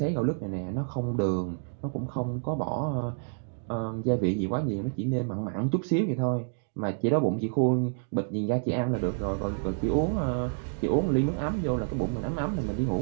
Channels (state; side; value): silent; left; digital silence